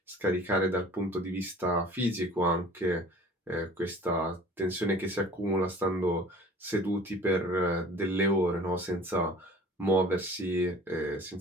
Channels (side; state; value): both; normal; correlation 0.47